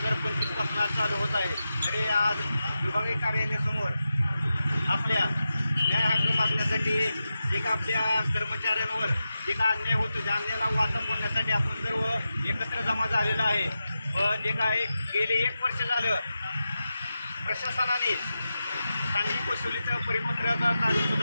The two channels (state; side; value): inverted; both; correlation -0.91